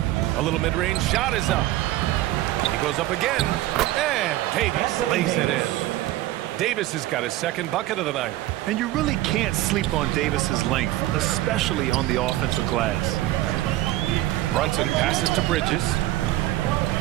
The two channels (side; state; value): left; quieter; 15.9 dB